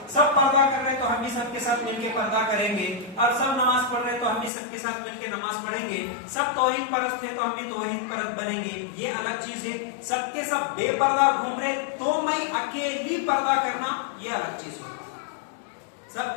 سب پردہ کر رہے تو ہم بھی سب کے ساتھ مل کے پردہ کریں گے، اور سب نماز پڑھ رہے تو ہم بھی سب کے ساتھ مل کے نماز پڑھیں گے. سب توحید پرست ہے تو ہم بھی توحید پرست بنیں گے، یہ الگ چیز ہے. سب کے سب بے پردہ گھوم رہے تو میں اکیلی پردہ کرنا، یہ الگ چیز ہے. سب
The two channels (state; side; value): drops out; right; at 4.5 s